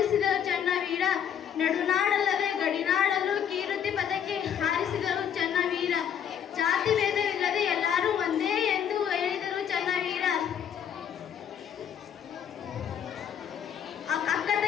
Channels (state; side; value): quieter; right; 8.7 dB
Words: ಚನ್ನವೀರ. ನಡುನಾಡಲ್ಲದೆ ಗಡಿನಾಡಲ್ಲೂ ಕೀರ್ತಿ ಪದಕ್ಕೆ ಹಾರಿಸಿದರು ಚನ್ನವೀರ. ಜಾತಿ ಭೇದವಿಲ್ಲದೆ ಎಲ್ಲರೂ ಒಂದೇ ಎಂದು ಹೇಳಿದರು ಚನ್ನವೀರ. ಅಕ್ಕ